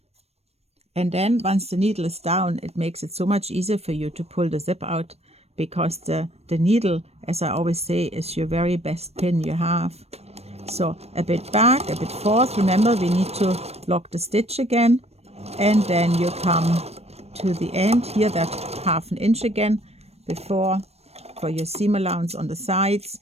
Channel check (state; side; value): late; left; 0.30 ms